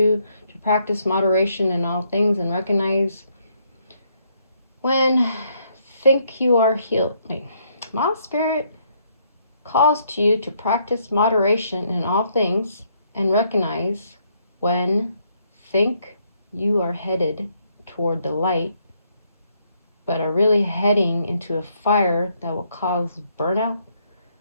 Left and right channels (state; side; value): inverted; both; correlation -0.71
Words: to practice moderation in all things and recognize when think you are healed. Moth Spirit calls to you to practice moderation in all things and recognize when think you are headed toward the light, but are really heading into a fire that will cause burnout.